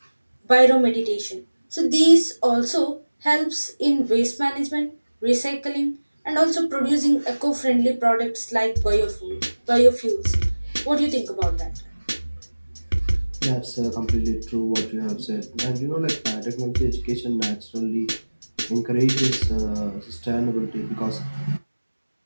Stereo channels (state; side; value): inverted; both; correlation -1.00